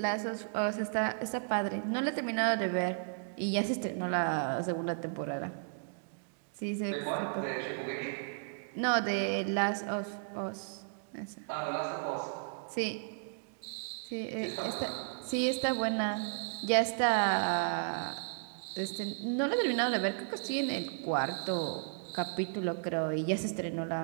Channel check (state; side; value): silent; left; digital silence